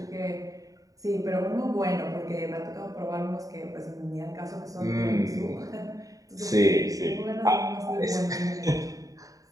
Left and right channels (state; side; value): late; left; 0.17 ms